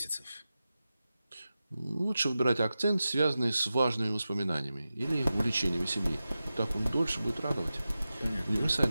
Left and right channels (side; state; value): both; inverted; correlation -0.93